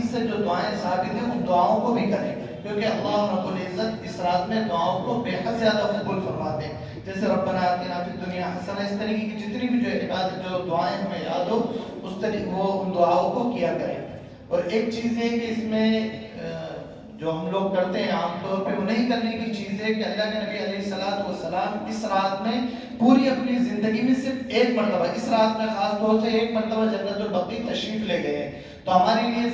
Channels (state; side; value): identical; both; correlation 1.00